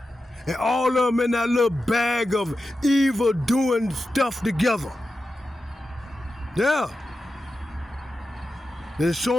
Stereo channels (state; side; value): normal; both; correlation 0.91